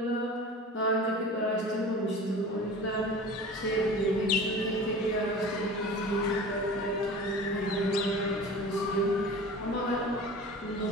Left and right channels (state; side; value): normal; both; correlation 0.38